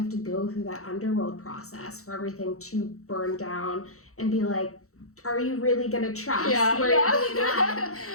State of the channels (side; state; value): right; late; 0.64 ms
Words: to go through that underworld process for everything to burn down and be are you really going to trust where you're being